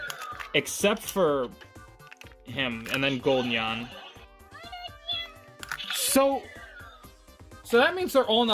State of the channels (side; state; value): both; identical; correlation 1.00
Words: Except for him, and then Golden Yan. So that means they're all